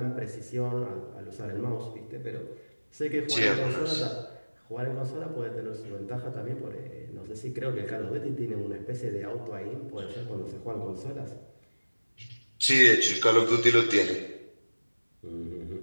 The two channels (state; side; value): inverted; both; correlation -1.00